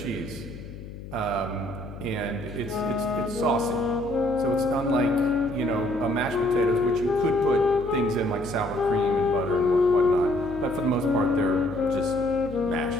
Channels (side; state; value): left; noise; hum, 13 dB below the sound